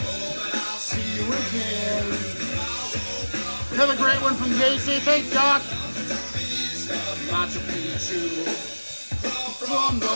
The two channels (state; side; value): inverted; both; correlation -1.00